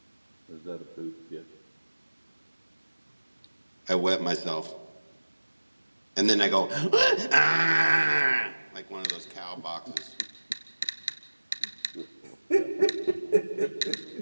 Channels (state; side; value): inverted; both; correlation -1.00